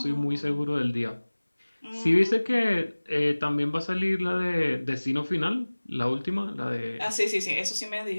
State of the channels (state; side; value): inverted; both; correlation -1.00